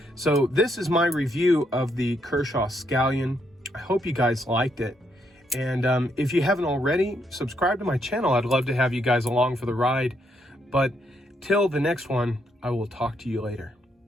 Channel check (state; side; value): normal; both; correlation 0.76